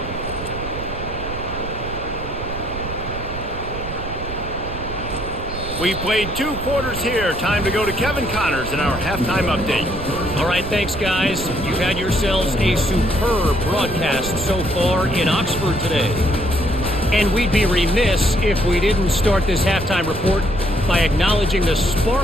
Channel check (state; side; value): noise; right; rumble, 9 dB below the sound